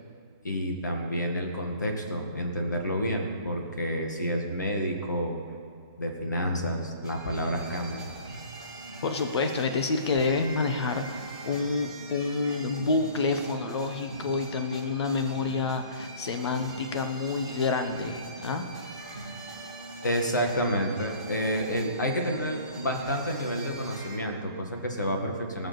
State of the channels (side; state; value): both; inverted; correlation -0.49